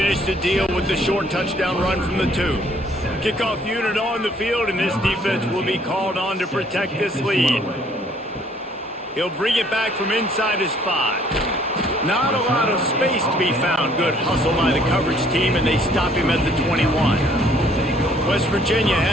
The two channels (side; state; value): both; normal; correlation 0.61